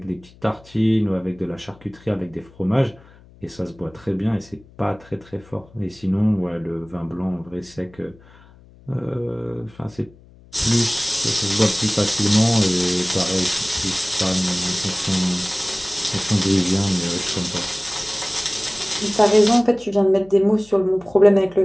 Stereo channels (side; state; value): left; noise; hum, 25 dB below the sound